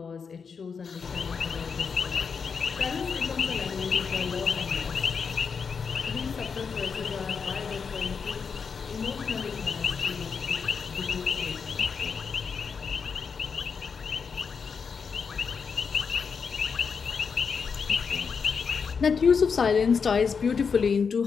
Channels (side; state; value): right; quieter; 5.8 dB